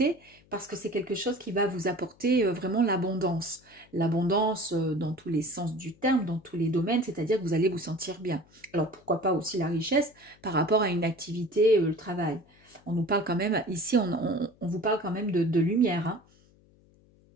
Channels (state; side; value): noise; left; hum, 30 dB below the sound